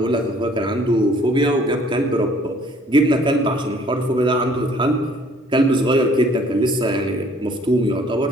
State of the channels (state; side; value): normal; both; correlation 0.58